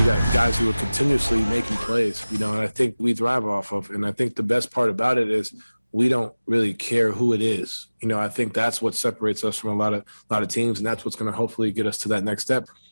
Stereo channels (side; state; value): both; inverted; correlation -0.99